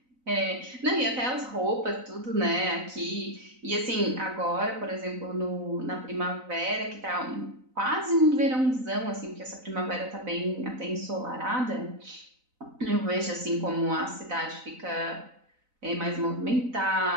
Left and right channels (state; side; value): late; left; 3.9 ms